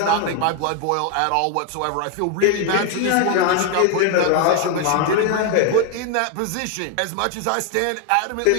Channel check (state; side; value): different; both; correlation 0.01